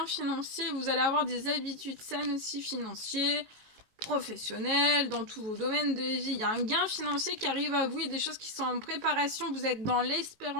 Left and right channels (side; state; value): left; late; 19 ms